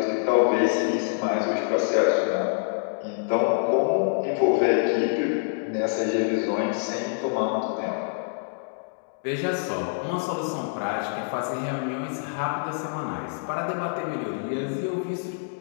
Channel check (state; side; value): silent; right; digital silence